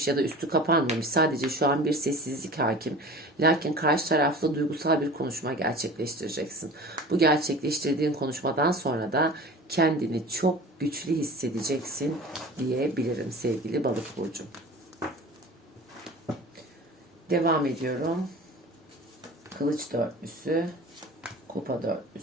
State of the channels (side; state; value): both; normal; correlation 0.38